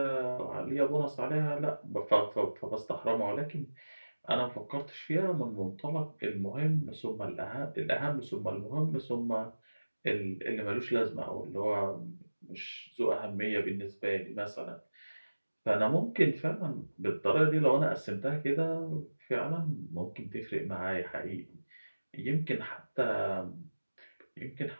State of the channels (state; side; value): inverted; both; correlation -1.00